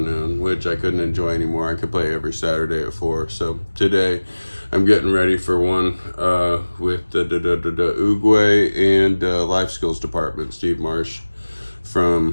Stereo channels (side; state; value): both; inverted; correlation -1.00